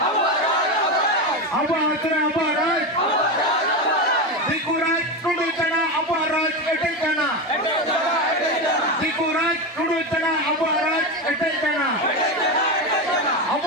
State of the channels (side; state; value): both; normal; correlation 0.16